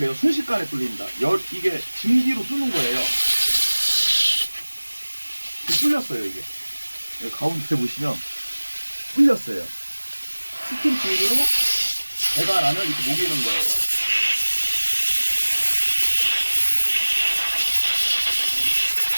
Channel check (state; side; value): inverted; both; correlation -1.00